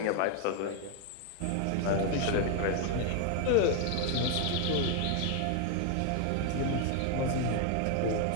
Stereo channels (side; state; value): both; different; correlation 0.00